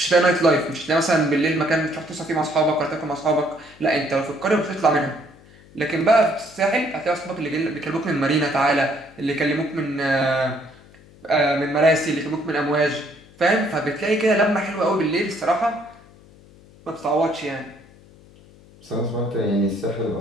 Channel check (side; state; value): left; noise; hum, 25 dB below the sound